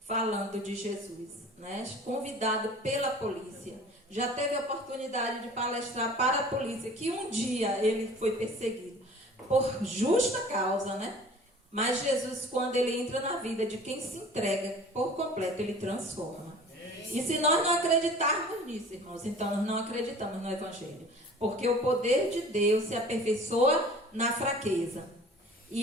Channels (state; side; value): normal; both; correlation 0.45